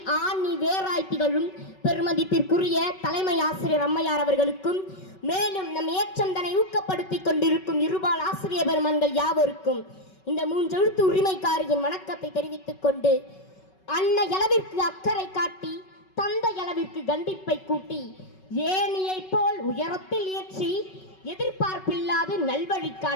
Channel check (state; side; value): late; right; 5.3 ms